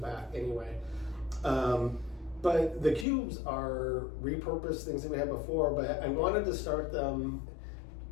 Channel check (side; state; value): right; drops out; at 3.1 s